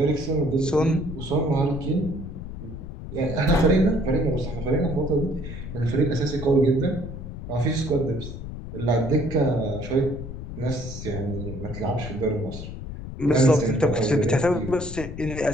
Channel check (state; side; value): noise; left; rumble, 9 dB below the sound